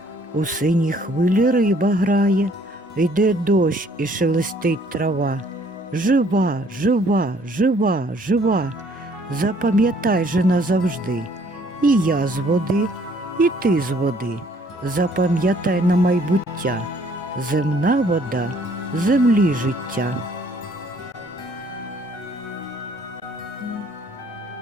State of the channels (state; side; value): normal; both; correlation 0.61